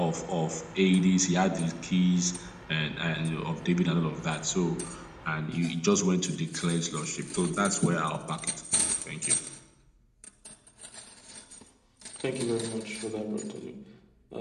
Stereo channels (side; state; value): both; identical; correlation 1.00